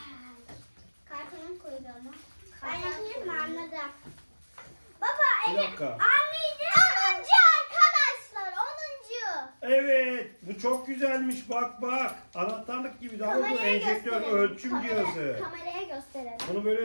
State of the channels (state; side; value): inverted; both; correlation -1.00